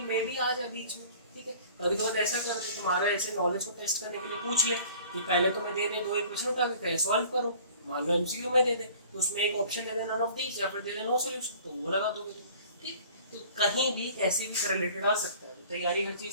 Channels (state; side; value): inverted; both; correlation -0.48